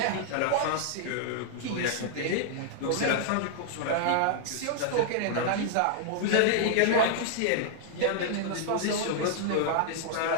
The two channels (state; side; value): different; both; correlation -0.01